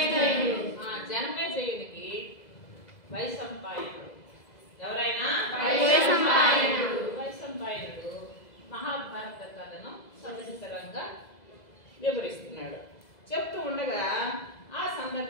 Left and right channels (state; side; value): late; right; 2.0 ms